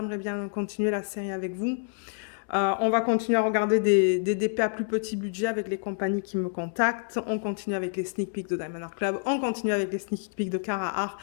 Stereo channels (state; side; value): silent; right; digital silence